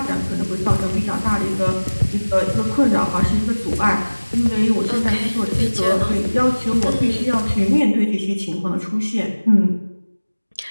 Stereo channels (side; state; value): both; inverted; correlation -1.00